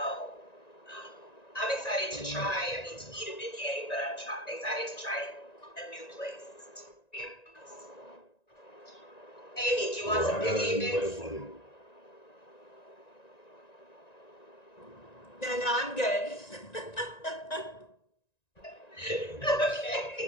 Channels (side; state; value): right; late; 1.9 ms